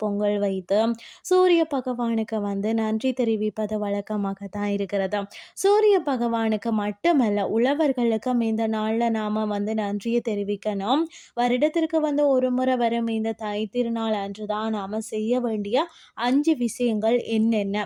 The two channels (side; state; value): both; identical; correlation 1.00